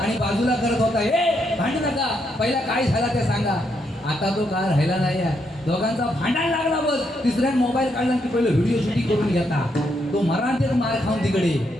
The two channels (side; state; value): both; normal; correlation 0.78